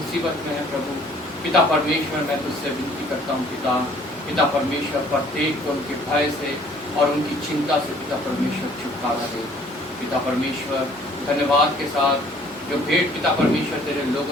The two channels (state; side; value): normal; both; correlation 0.57